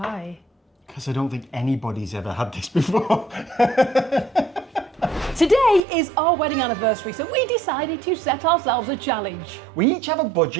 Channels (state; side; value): drops out; left; at 5.8 s